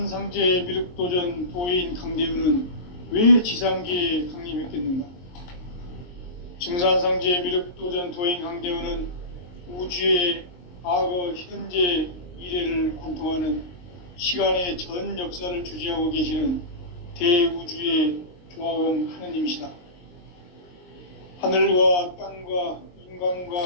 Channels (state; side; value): late; right; 22 ms